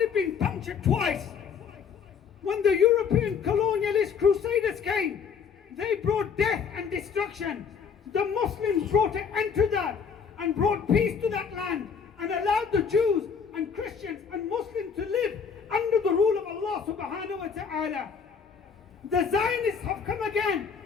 been punctured twice. When the European colonialist crusaders came, they brought death and destruction. The Muslims brought an end to that and brought peace to that land and allowed the Jews and Christians and Muslims to live under the rule of Allah subhanahu wa ta'ala. The Zionists have come again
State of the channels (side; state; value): right; quieter; 6.4 dB